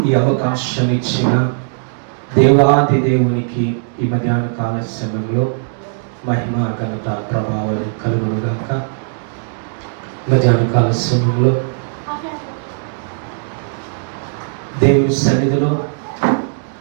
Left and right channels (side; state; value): left; silent; digital silence